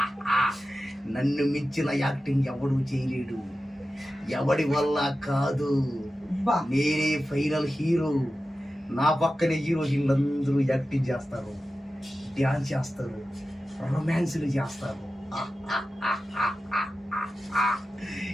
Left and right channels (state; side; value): normal; both; correlation 0.93